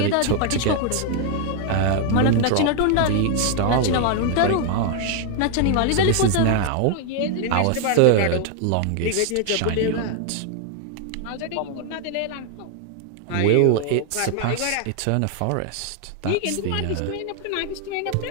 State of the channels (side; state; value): both; different; correlation 0.00